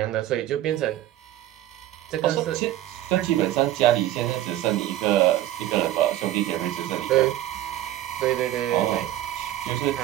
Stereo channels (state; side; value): quieter; left; 13.8 dB